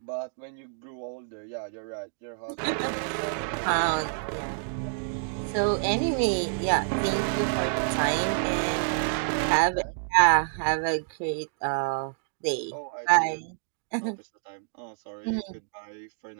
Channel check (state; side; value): silent; left; digital silence